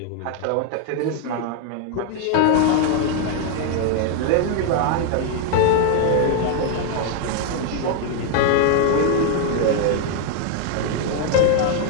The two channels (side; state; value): both; different; correlation 0.00